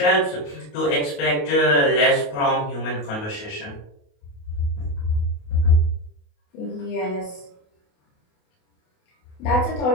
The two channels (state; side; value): late; right; 28 ms